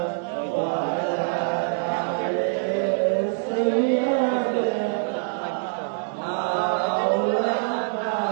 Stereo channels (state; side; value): silent; left; digital silence